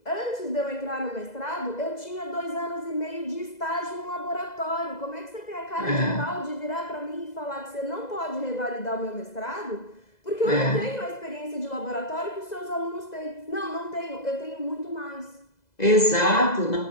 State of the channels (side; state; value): right; late; 2.0 ms